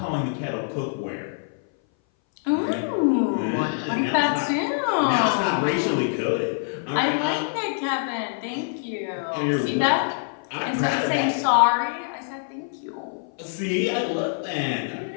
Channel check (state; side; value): silent; right; 59 dB below the other